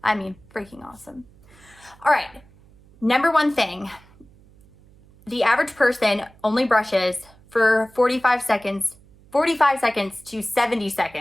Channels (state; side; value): noise; right; hum, 27 dB below the sound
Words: I mean, freaking awesome. All right, number one thing, the average person only brushes for 45 seconds to 70